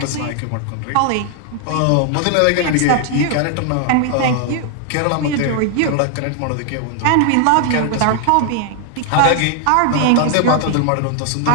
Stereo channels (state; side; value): different; both; correlation 0.00